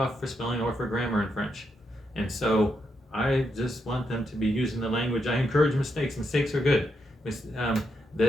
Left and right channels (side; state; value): both; normal; correlation 0.81